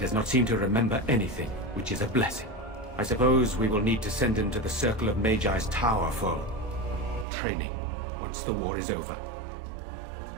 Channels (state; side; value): drops out; left; at 7.2 s